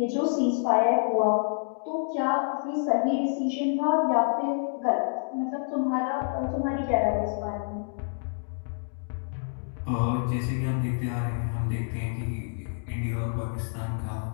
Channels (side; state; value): right; silent; digital silence